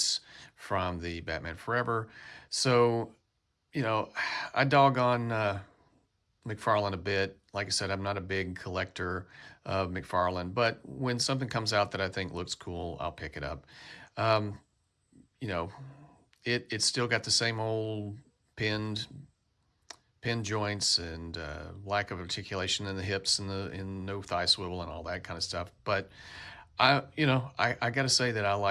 from the Batman Forever. So I dog on McFarlane a bit. Like I said, I'm not a big collector of McFarlane, but when something comes out that I think looks cool, I'll pick it up. Um, you know, it's still got the same old pinned pin joints and lack of articulation in the hips and no thigh swivel and all that kind of stuff. But I got to say that I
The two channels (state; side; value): identical; both; correlation 1.00